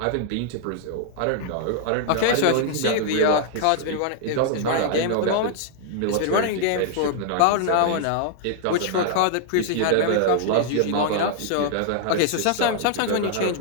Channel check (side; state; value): both; different; correlation -0.01